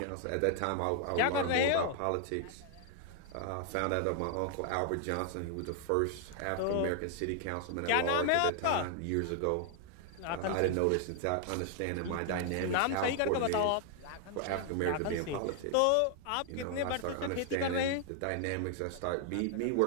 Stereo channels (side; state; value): both; different; correlation 0.00